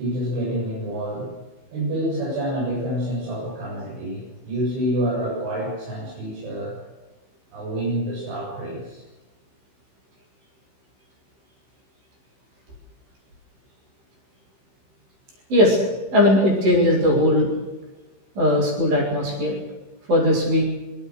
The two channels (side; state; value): left; late; 15 ms